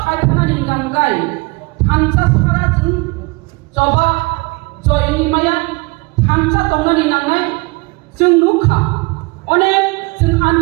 खायथाना निगांगाय थानसा सारा जों जबा जयनि माया थानसा दंनानि नांनाय जों नुखा अनेक जों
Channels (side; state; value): left; quieter; 26.4 dB